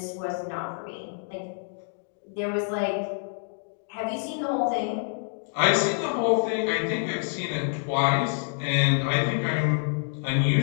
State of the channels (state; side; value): silent; right; digital silence